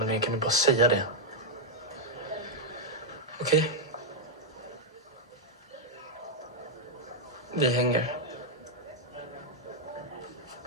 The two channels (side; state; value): both; normal; correlation -0.02